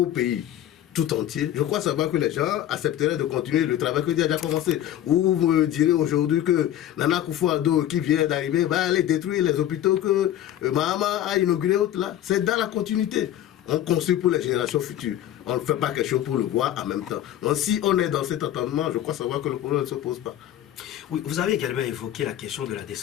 pays tout entier, je crois savoir que les gens accepteraient de continuer le travail que Dieu a déjà commencé. Ou vous me direz aujourd'hui que Nana Akufo-Addo, qui vient d'arriver, va aller détruire les hôpitaux que Mahama a inaugurés. C'est dans la continuité. On construit pour les générations futures. On ne fait pas quelque chose pour le voir en même temps. Donc si on est dans cet entendement, je crois savoir que le problème ne se pose pas. Oui, vous avez également évoqué la question de la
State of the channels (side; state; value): right; quieter; 12.0 dB